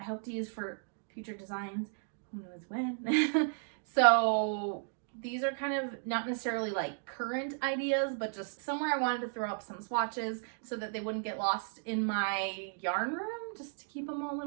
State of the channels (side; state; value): left; silent; digital silence